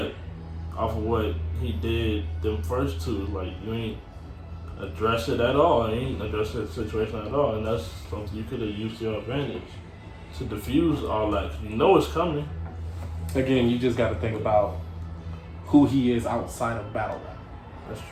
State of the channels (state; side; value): identical; both; correlation 1.00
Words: off of what he did, them first two, like you ain't address it at all. You ain't address that situation at all, and that's something you could have used to your advantage to diffuse all that. You know it's coming. Again, you just got to think about who he is outside of battle rap. That's